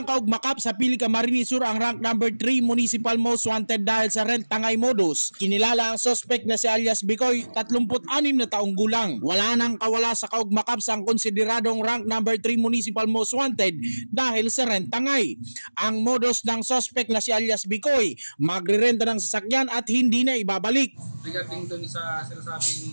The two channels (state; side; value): inverted; both; correlation -1.00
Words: kaugmakap sa Pili Camarines Sur ang rank number 3 Municipal Most Wanted dahil sa rent tangay modus. Kinilala ang suspect na si alias Bicoy, 36 na taong gulang. Wala nang kawala sa kaugmakap sa konsideradong rank number 3 Municipal Most Wanted dahil sa rent tangay. Ang modus ng suspect na si alias Bicoy, magrerenta ng sasakyan at hindi na ibabalik. Regarding dun sa